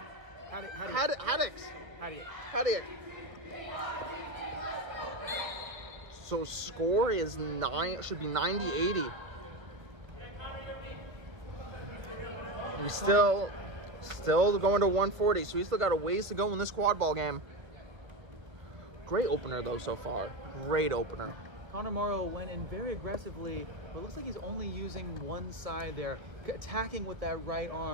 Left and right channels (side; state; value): left; late; 1.5 ms